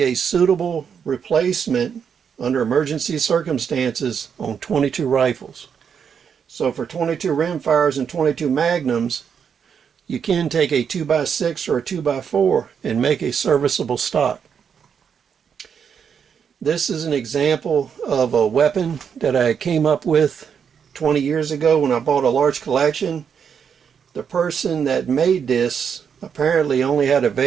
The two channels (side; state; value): left; quieter; 7.2 dB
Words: a suitable replacement under emergency circumstances on 22 rifles. So for 22 rimfires and 22 Magnums, you can take a 2x6 or a 2x4 and make a serviceable stock. This is an example of a weapon that I came up with 20 years ago when I bought a large collection. The person that made this apparently only had